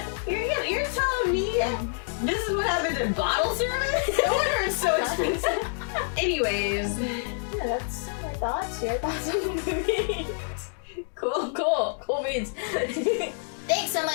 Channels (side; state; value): right; silent; digital silence